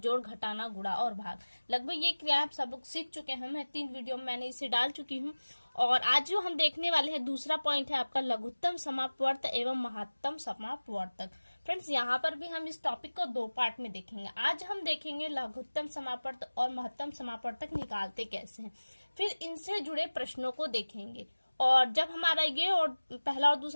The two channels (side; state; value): both; inverted; correlation -1.00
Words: घटाना, गुणा और भाग। लगभग ये क्रिया आप सब लोग सीख चुके हैं। मैं 3 वीडियो में मैंने इसे डाल चुकी हूँ। और आज जो हम देखने वाले हैं, दूसरा पॉइंट है आपका लघुत्तम समापवर्त एवं महत्तम समापवर्तक। फ्रेंड्स, यहाँ पर भी हम इस टॉपिक को 2 पार्ट में देखेंगे। आज हम देखेंगे लघुत्तम समापवर्त और महत्तम समापवर्तक निकालते कैसे हैं, फिर इनसे जुड़े प्रश्नों को देखेंगे। और जब हमारा ये और पहला और